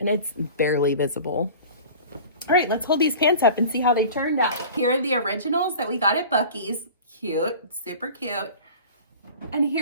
it's barely visible. All right, let's hold these pants up and see how they turned out. Here are the originals that we got at Buc-ee's. Cute, super cute. And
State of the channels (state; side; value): inverted; both; correlation -0.40